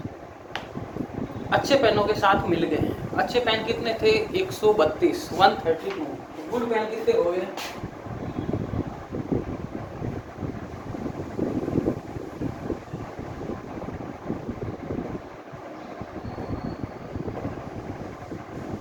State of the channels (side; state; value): both; identical; correlation 1.00